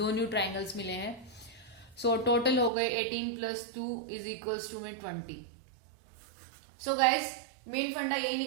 ट्रायंगल्स मिले हैं. सो टोटल हो गए 18 + 2 = में 20. सो गाइस, मेन फंडा यही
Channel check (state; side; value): drops out; left; at 2.7 s